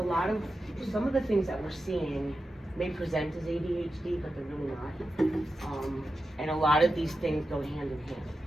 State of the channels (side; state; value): both; normal; correlation 0.91